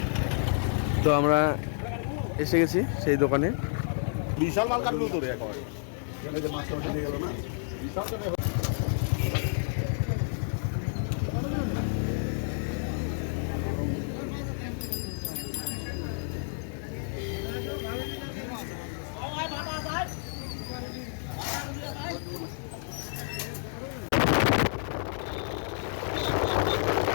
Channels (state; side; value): silent; right; digital silence